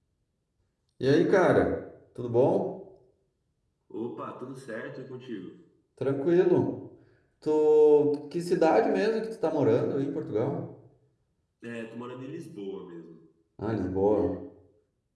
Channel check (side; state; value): both; identical; correlation 1.00